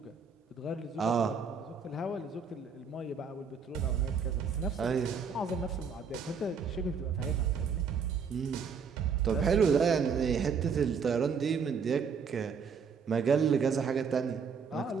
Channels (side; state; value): left; quieter; 5.9 dB